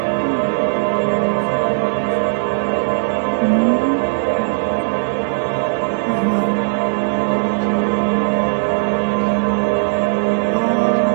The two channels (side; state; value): left; silent; digital silence